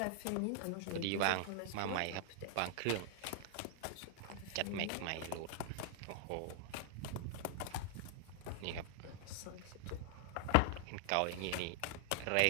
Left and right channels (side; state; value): both; different; correlation -0.01